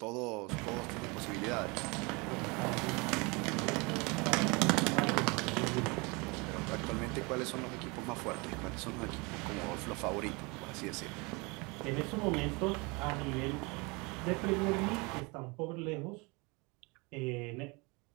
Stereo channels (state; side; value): quieter; left; 27.8 dB